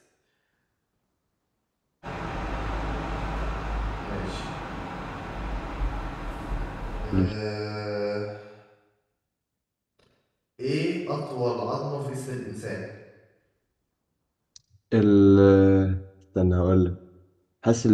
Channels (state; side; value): identical; both; correlation 1.00